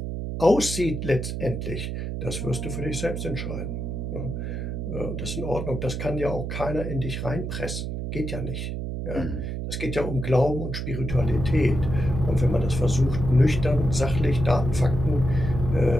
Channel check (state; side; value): noise; right; hum, 4 dB below the sound